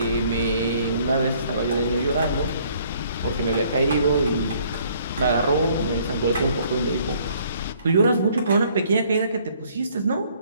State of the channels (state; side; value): inverted; both; correlation -0.62